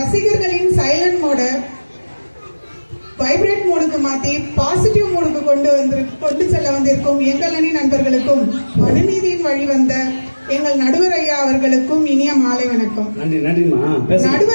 சைலண்ட் மோட வைப்ரேட் மோடுக்கு மாத்தி பாசிட்டிவ் மோடுக்கு கொண்டு செல்ல வந்திருக்கும் எங்கள் அணி நண்பர்களுக்கும் மனுநீதியின் வழி வந்த எங்கள் நடுவர் ஐயா அவர்களுக்கும் இனிய மாலை வணக்கம்.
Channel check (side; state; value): both; inverted; correlation -1.00